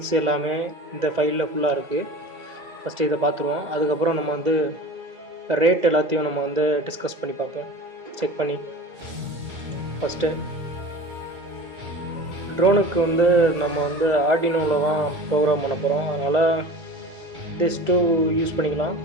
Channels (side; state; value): left; late; 2.0 ms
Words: எல்லாமே இந்த ஃபைலில் ஃபுல்லாக இருக்குது. ஃபஸ்ட்டு இதை பார்த்துருவோம். அதுக்கப்புறம் நம்ம வந்து ரேட் எல்லாத்தையும் நம்ம வந்து டிஸ்கஸ் பண்ணி பார்ப்போம், செக் பண்ணி. ஃபஸ்ட்டு ட்ரோனுக்கு வந்து நம்ம வந்து ஆர்டினோவில் தான் ப்ரோக்ராம் பண்ண போகிறோம். அதனால் திஸ் டூ யூஸ் பண்ணிக்கலாம்.